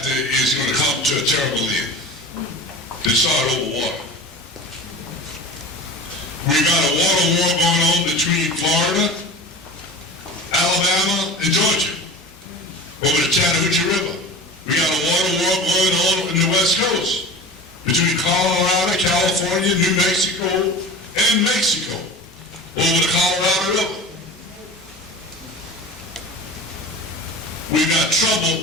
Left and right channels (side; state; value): both; normal; correlation 0.35